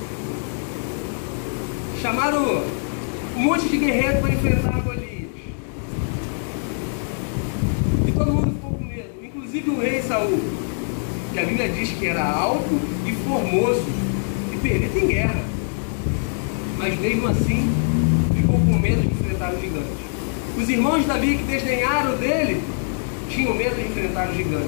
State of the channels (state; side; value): silent; right; digital silence